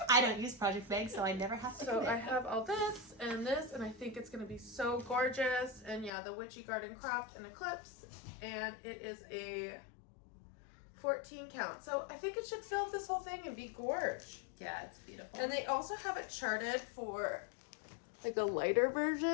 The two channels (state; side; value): drops out; right; at 6.1 s